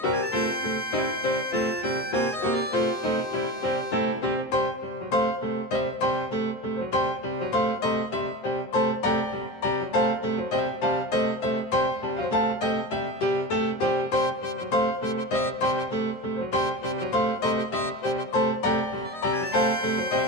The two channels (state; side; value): late; right; 9.7 ms